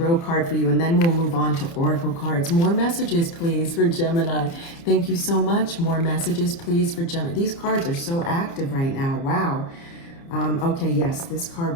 card for you, and then we'll move on to oracle cards. More messages, please, for Gemini. Thank you so much. More messages, please, for Gemini. These cards are so active right now. Wow. Okay, yes, this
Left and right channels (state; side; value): late; right; 30 ms